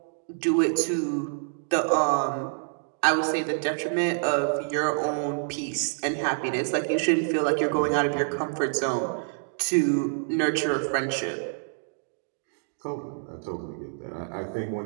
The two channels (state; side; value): silent; left; digital silence